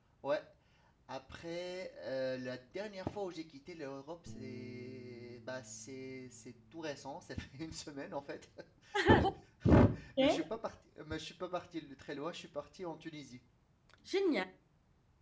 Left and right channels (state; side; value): identical; both; correlation 1.00